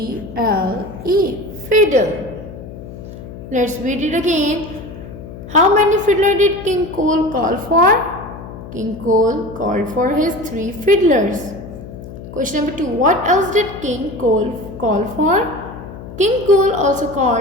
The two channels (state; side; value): noise; left; hum, 13 dB below the sound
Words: fiddle. Let's read it again. How many fiddlers did King Cole call for? King Cole called for his 3 fiddlers. Question number 2. What else did King Cole call for? King Cole also